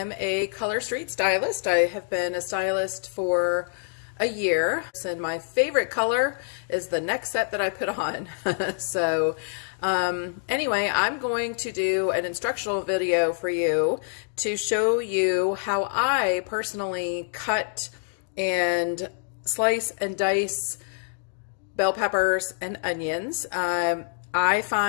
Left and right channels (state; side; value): silent; right; digital silence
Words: a color street stylist. I have been a stylist for a year, and my favorite color is the next set that I put on. Anyway, I'm going to do an instructional video for you to show you how I personally cut and slice and dice bell peppers and onions. I